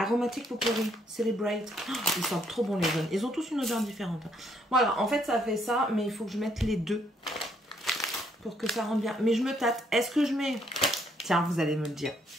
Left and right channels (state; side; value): normal; both; correlation 0.70